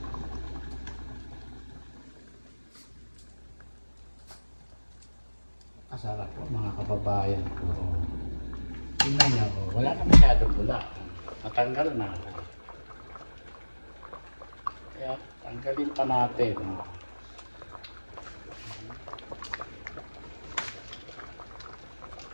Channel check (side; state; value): both; inverted; correlation -1.00